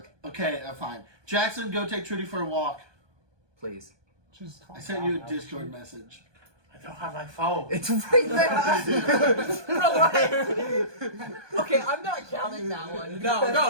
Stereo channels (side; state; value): left; late; 1.2 ms